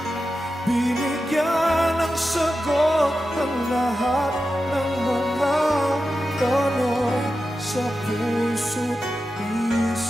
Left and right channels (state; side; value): normal; both; correlation 0.91